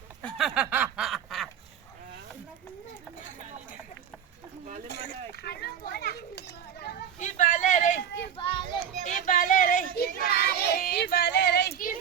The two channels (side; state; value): left; quieter; 8.7 dB